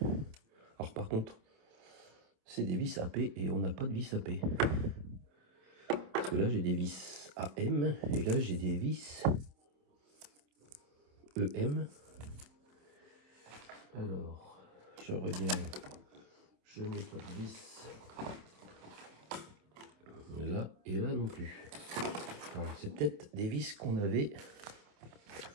Alors, par contre, c'est des vis AP et on n'a pas de vis AP. Parce que là, j'ai des vis AM et là, j'ai des vis EM. Alors, je regarde, je n'ai pas de vis là et là non plus. Alors, c'est peut-être des vis qu'on avait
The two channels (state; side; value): late; left; 27 ms